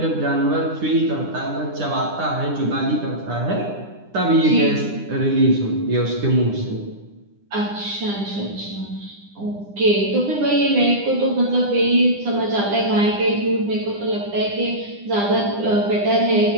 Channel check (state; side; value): late; left; 9.9 ms